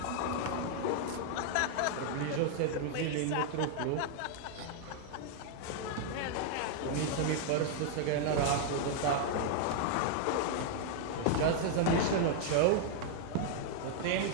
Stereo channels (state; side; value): different; both; correlation 0.00